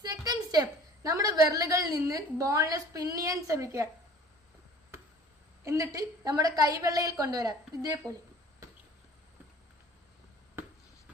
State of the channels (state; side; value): normal; both; correlation 0.47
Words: സെക്കൻഡ് സ്റ്റെപ്പ്, നമ്മുടെ വിരലുകളിൽ നിന്ന് ബോളിനെ സ്പിൻ ചെയ്യാൻ ശ്രമിക്കുക. എന്നിട്ട് നമ്മുടെ കൈവെള്ളയിൽ കൊണ്ടുവരാം, ഇതേപോലെ.